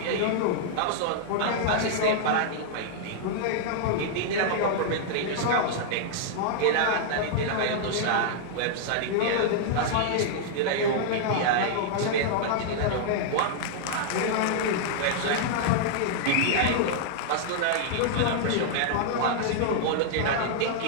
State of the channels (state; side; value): different; both; correlation -0.01